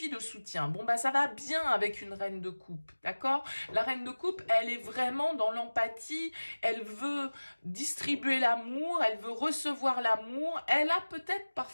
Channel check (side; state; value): both; inverted; correlation -1.00